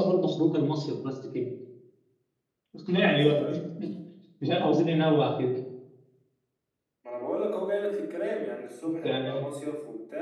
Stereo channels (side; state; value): both; identical; correlation 1.00